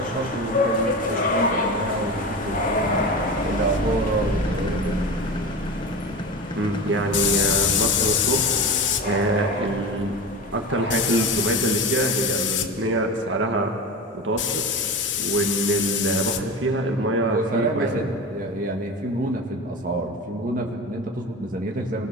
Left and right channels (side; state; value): both; normal; correlation 0.27